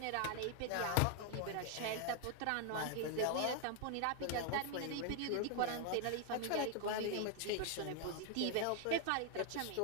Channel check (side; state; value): both; different; correlation 0.00